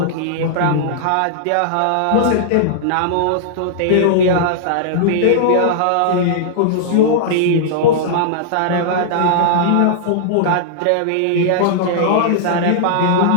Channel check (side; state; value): both; different; correlation -0.01